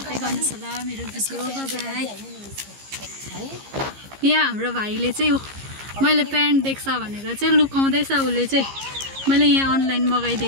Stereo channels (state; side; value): late; left; 15 ms